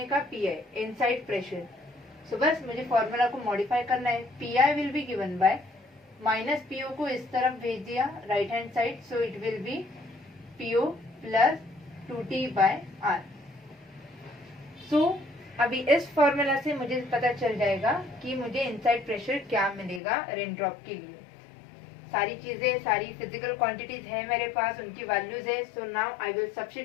का PI, इनसाइड प्रेशर। सो बस मुझे फॉर्मूला को मॉडिफाई करना है। PI will be given by minus PO को इस तरफ भेज दिया right hand side, so it will be PO plus 2T by R। So अभी इस फॉर्मूला से मुझे पता चल जाएगा कि मुझे इनसाइड प्रेशर क्या मिलेगा रेन ड्रॉप के लिए। सारी चीजें, सारी फिजिकल क्वांटिटीज है मेरे पास, उनकी वैल्यूज है। So now I will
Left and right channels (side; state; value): right; drops out; at 20.0 s